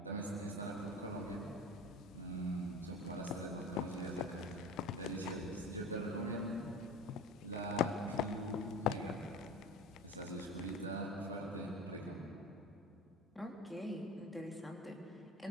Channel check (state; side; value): normal; both; correlation 0.34